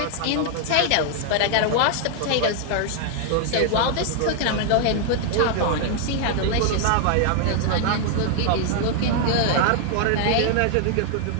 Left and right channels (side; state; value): both; different; correlation 0.00